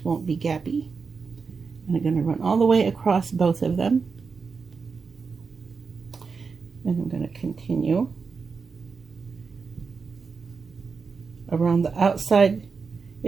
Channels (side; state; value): left; quieter; 5.1 dB